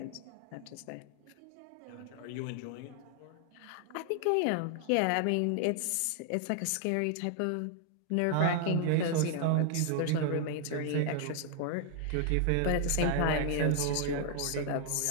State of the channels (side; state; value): both; different; correlation 0.00